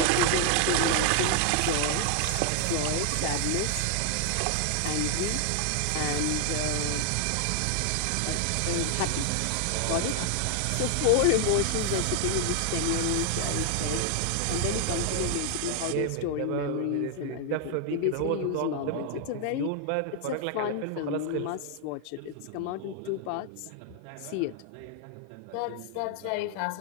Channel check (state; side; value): different; both; correlation 0.00